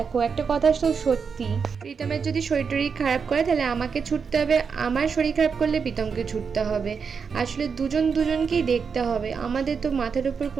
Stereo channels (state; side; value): quieter; left; 5.9 dB